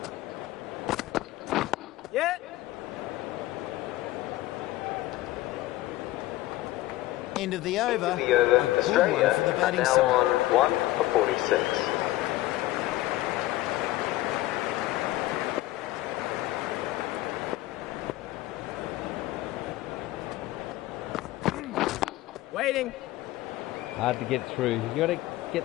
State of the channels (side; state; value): right; quieter; 16.9 dB